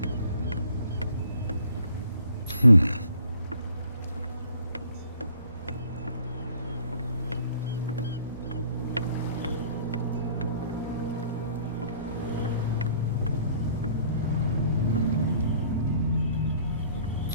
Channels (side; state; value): both; inverted; correlation -0.56